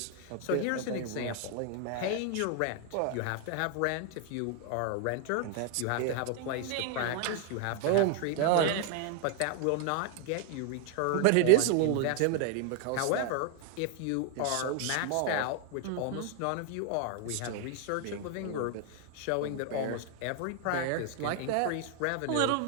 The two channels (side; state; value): both; different; correlation 0.00